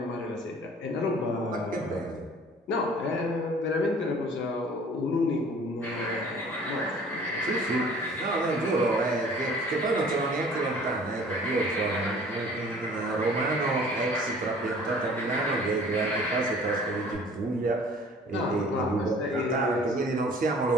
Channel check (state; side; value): normal; both; correlation 0.50